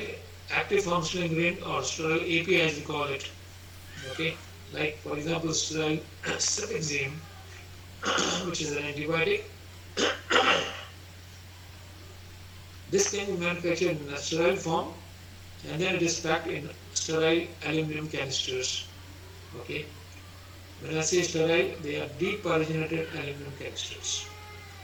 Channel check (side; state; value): both; identical; correlation 1.00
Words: active functional ingredient or sterile API as we call it. Okay, like for example sterile cefixime, which is an antibiotic. This can be manufactured in a sterile form and then it is packed in sterile aluminum canisters. Okay, when I say sterile, they are depyrogenated aluminum canisters.